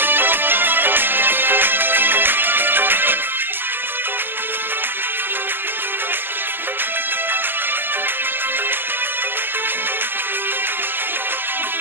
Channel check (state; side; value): late; left; 0.099 ms